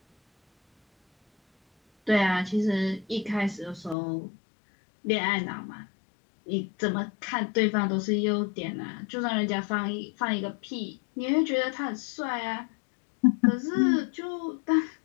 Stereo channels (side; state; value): right; drops out; at 4.0 s